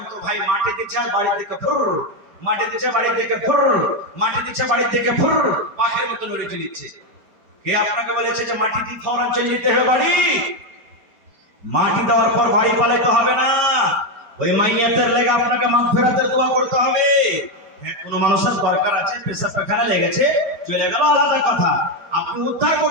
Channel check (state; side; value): late; left; 4.7 ms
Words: তো ভাই মাটি দিচ্ছে বাড়ির দিকে ফুর, মাটি দিচ্ছে বাড়ির দিকে ফুর, মাটি দিচ্ছে বাড়ির দিকে ফুর, পাখির মতো লড়ে চলিচ্ছে। কে আপনাকে বলেছে যে মাটি দিয়ে ফৌরান চলে যেতে হবে বাড়ি? মাটি দেওয়ার পর বাড়ি পালাইতে হবে না। ওই মাইয়াতের লেগে আপনাকে মাগফিরাতের দোয়া করতে হবে। হ্যাঁ, কোনো মানুষের দরকার আছে, পেশাব পায়খানা লেগেছে, চলে গেল, আলাদা কথা। আপনি উদ্ধার